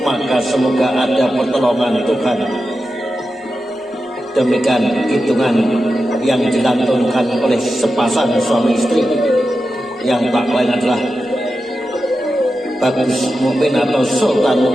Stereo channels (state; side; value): normal; both; correlation 0.91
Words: Maka semoga ada pertolongan Tuhan. Demikian hitungan yang dilantunkan oleh sepasang suami istri yang tak lain adalah Bagus Mukmin atau Sultan